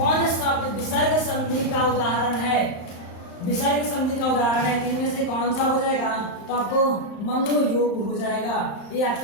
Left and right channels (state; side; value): late; right; 35 ms